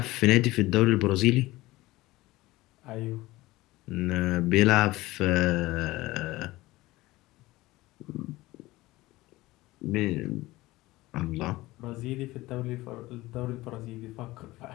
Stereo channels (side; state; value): right; quieter; 18.9 dB